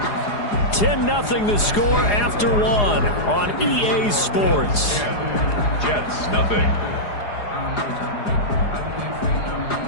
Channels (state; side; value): late; right; 4.9 ms